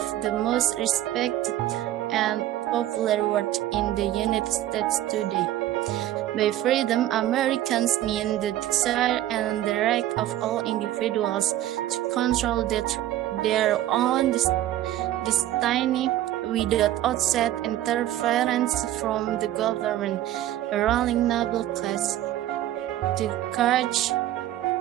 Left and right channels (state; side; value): quieter; left; 13.4 dB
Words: the most respected and popular words in the United States today. By freedom, Americans mean the desire and the right of all individuals to control their own destiny without outside interference from the government, a ruling noble class, the church,